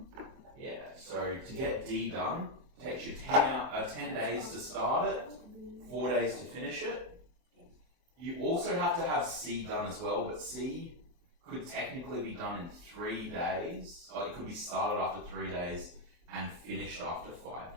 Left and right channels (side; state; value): left; late; 23 ms